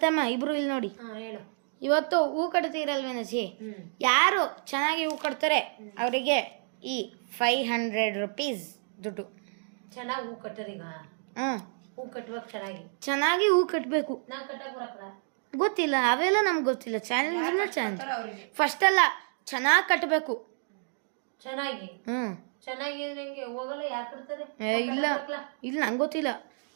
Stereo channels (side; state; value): left; silent; 58 dB below the other